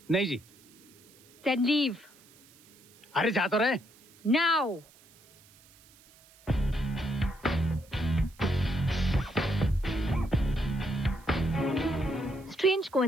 नहीं जी। Then leave. अरे जा तो रहे। Now. Strange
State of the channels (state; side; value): noise; right; hiss, 27 dB below the sound